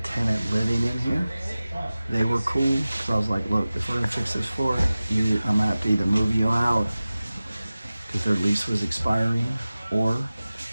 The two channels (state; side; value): inverted; both; correlation -0.97